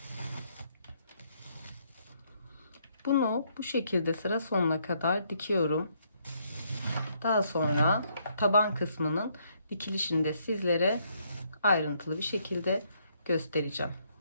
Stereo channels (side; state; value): both; inverted; correlation -0.71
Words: Bunu bu şekilde sıra sonuna kadar dikiyorum. Daha sonra taban kısmının dikilişini de sizlere ayrıntılı bir şekilde göstereceğim.